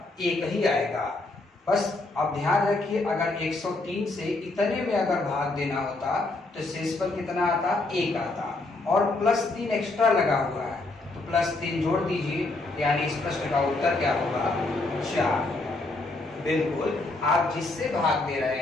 1 ही आएगा। बस अब ध्यान रखिए, अगर 103 से इतने में अगर भाग देना होता तो शेषफल कितना आता? 1 आता, और प्लस 3 एक्स्ट्रा लगा हुआ है तो प्लस 3 जोड़ दीजिए, यानी इस प्रश्न का उत्तर क्या होगा? 4। बिल्कुल, आप जिससे भाग दे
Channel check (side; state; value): right; quieter; 3.1 dB